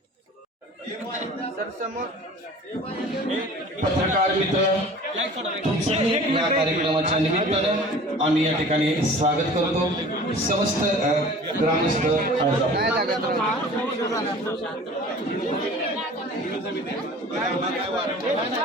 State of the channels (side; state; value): both; normal; correlation 0.44